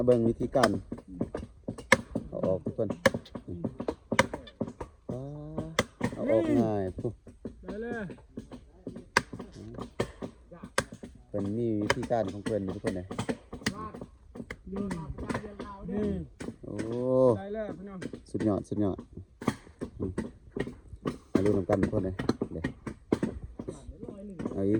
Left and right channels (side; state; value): both; identical; correlation 1.00